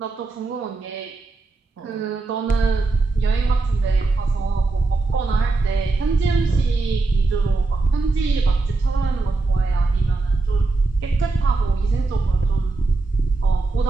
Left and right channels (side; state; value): left; quieter; 3.5 dB